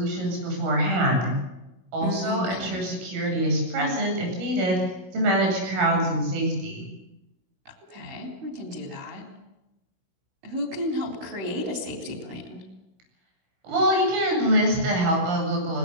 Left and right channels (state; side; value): late; left; 16 ms